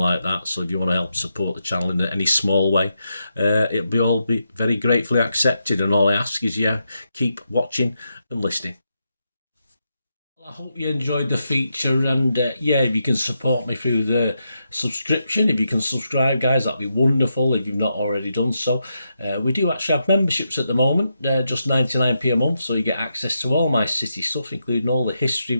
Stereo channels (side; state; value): both; inverted; correlation -0.84